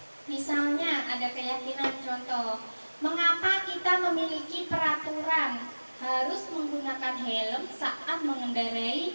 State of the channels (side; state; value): both; inverted; correlation -1.00